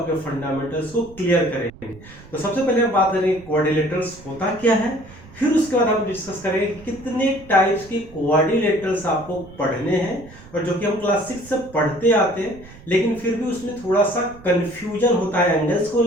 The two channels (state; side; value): noise; right; rumble, 20 dB below the sound